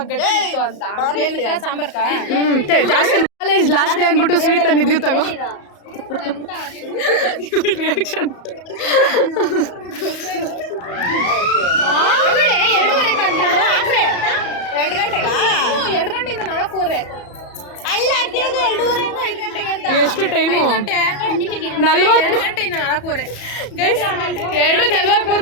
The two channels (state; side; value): late; right; 34 ms